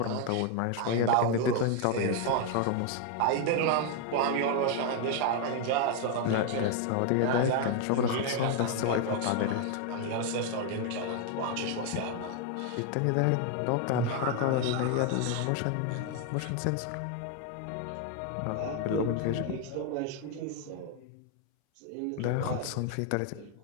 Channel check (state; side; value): different; both; correlation 0.01